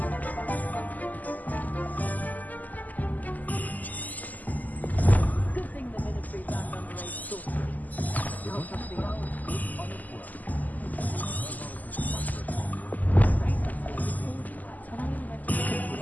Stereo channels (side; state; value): right; late; 0.081 ms